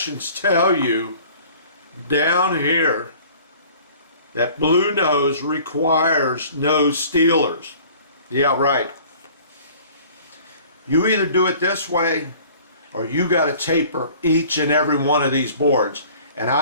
tell you down here that BLUENOSE requires no stealers. Yeah, right. You either do it this way or you got to taper each and every one of these boards. And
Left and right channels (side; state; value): both; inverted; correlation -0.49